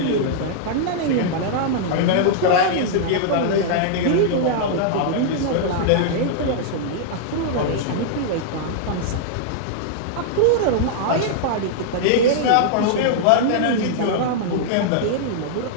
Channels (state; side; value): different; both; correlation -0.01